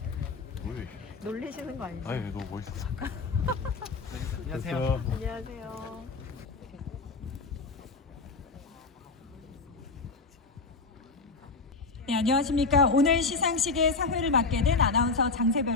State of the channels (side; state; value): right; quieter; 4.2 dB